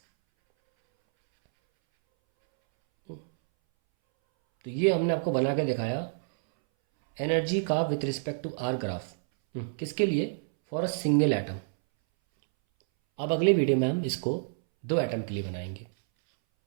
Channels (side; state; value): left; silent; 59 dB below the other